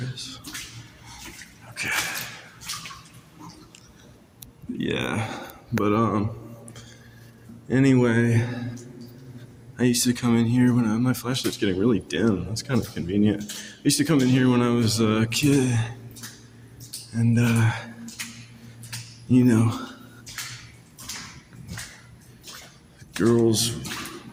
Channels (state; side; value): identical; both; correlation 1.00